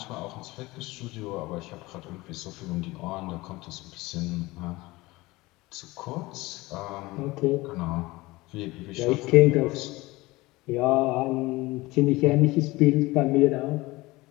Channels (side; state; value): right; quieter; 20.8 dB